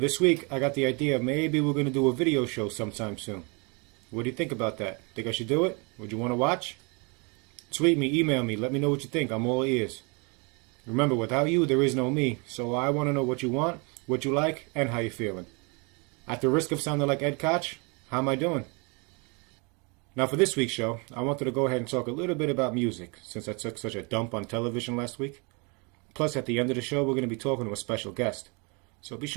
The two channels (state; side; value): quieter; left; 32.0 dB